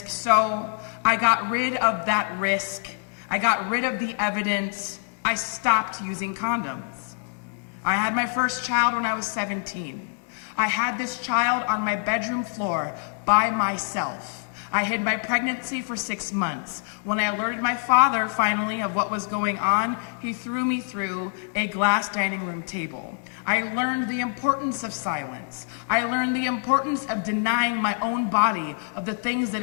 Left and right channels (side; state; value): right; silent; 55 dB below the other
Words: so I got rid of that risk. I got rid of the evidence. I stopped using condoms. I had my first child when I was 17. I had this child on my bedroom floor by myself. I hid my pregnancy for 6 months. When I alerted my father finally of what was going on, he threw me through a glass dining room table. I learned the importance of silence. I learned the importance of denying my own body of the things that